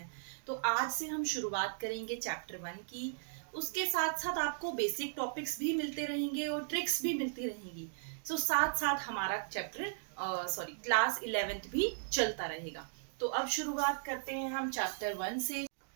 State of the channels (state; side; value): silent; left; digital silence